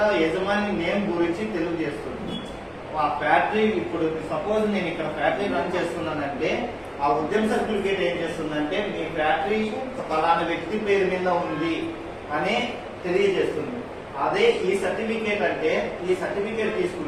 యజమాని నేమ్ గురించి తెలియజేస్తుంది. ఆ ఫ్యాక్టరీ ఇప్పుడు సపోజ్ నేను ఇక్కడ ఫ్యాక్టరీ రన్ చేస్తున్నానంటే ఆ ఉద్యమ సర్టిఫికేట్ ఏం చేస్తుందంటే మీ ఫ్యాక్టరీ ఫలానా వ్యక్తి పేరు మీద ఉంది అని తెలియజేస్తుంది. అదే ఈ సర్టిఫికేట్ అంటే ఈ సర్టిఫికేట్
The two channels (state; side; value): identical; both; correlation 1.00